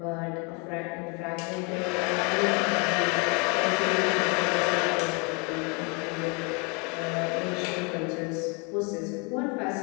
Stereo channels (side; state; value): right; quieter; 32.5 dB